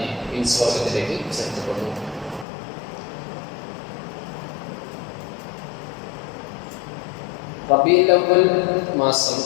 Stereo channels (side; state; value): right; drops out; at 2.5 s